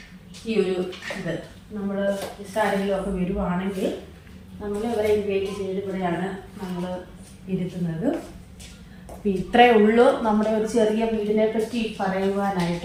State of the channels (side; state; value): both; identical; correlation 1.00